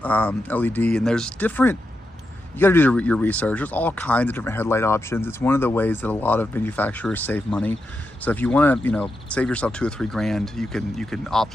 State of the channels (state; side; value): normal; both; correlation 0.86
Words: LED, and there's different. You got to do your research. There's all kinds of different headlight options. It's one of the ways that a lot of manufacturers save money. So if you want to, you know, save yourself $2 or $3 grand, you can opt